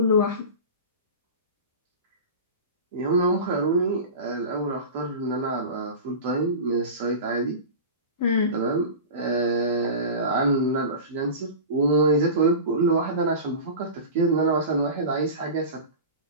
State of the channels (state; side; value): inverted; both; correlation -0.31